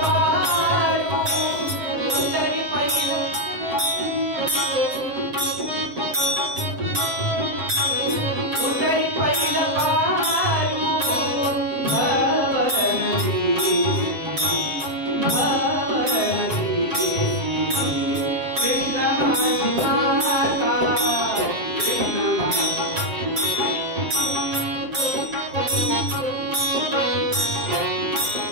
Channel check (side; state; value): left; late; 7.5 ms